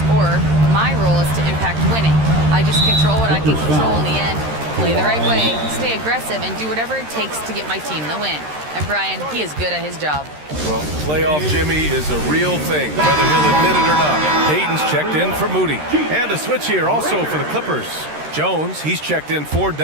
scorer. My role is to impact winning. I just control what I can control in the end, play the right way, stay aggressive, and do whatever it takes to get my team the win. And Brian, he is good at his job. Well, playoff Jimmy is a real thing, whether he'll admit it or not. Payton's checked in for Moody. And a switch here also for the Clippers. Jones, he's checked in for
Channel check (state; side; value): late; left; 13 ms